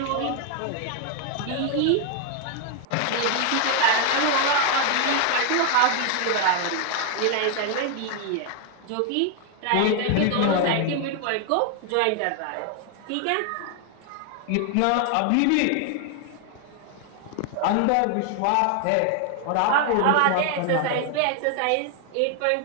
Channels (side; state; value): both; different; correlation 0.00